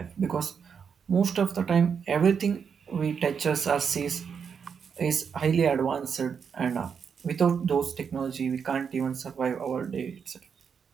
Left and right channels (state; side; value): quieter; left; 6.7 dB